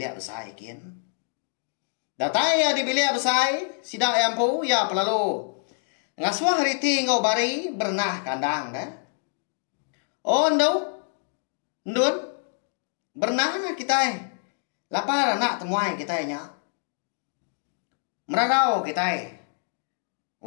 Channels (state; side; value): silent; right; 61 dB below the other